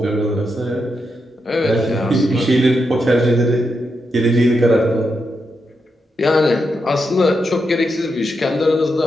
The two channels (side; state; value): both; normal; correlation 0.84